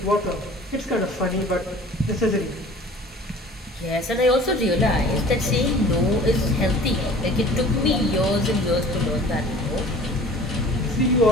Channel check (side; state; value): both; normal; correlation 0.46